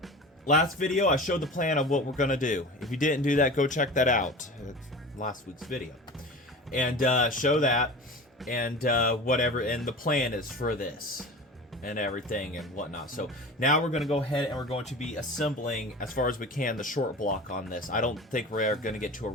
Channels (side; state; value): both; normal; correlation 0.34